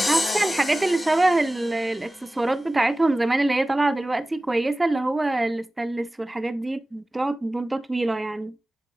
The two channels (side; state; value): both; normal; correlation 0.97